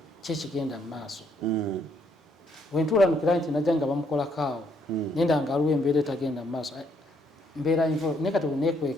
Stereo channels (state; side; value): normal; both; correlation 0.71